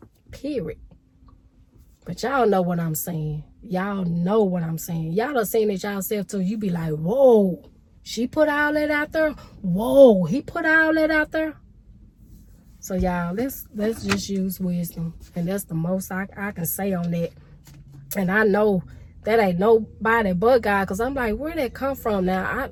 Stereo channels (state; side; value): identical; both; correlation 1.00